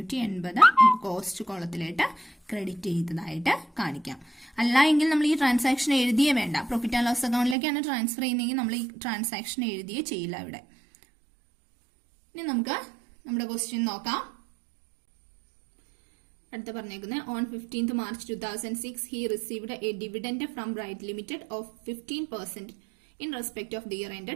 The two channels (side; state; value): left; drops out; at 7.6 s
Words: കോസ്റ്റ് കോളത്തിലായിട്ട് ക്രെഡിറ്റ് ചെയ്തതായിട്ട് കാണിക്കാം. അല്ല എങ്കിൽ നമ്മൾ ഈ ട്രാൻസാക്ഷൻ എഴുതിയേ വേണ്ട. പ്രോഫിറ്റ് ആൻഡ് ലോസ് അക്കൗണ്ടിലേക്കാണ് ട്രാൻസ്ഫർ ചെയ്യുന്നതെങ്കിൽ നമ്മൾ ഈ ട്രാൻസാക്ഷൻ എഴുതിയേ ചെയ്യില്ല ഇവിടെ. ഇനി നമുക്ക് നമ്മുടെ ക്വസ്റ്റ്യൻ നോക്കാം. അടുത്ത പറഞ്ഞേക്കുന്നത്, on 15th March 2006 he received a dividend from Bright Limited of 15% in respect of the year